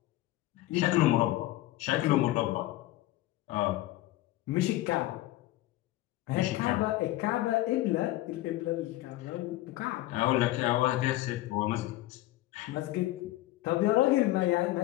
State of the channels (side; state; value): right; quieter; 16.5 dB